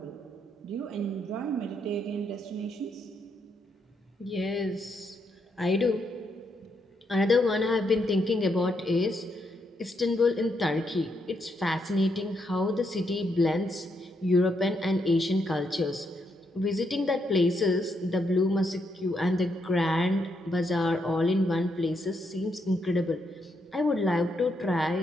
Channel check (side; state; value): both; normal; correlation 0.78